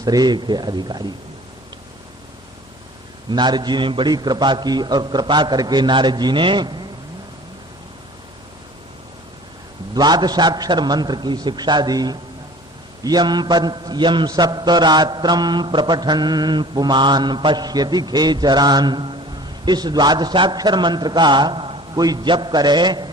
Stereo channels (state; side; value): normal; both; correlation 0.46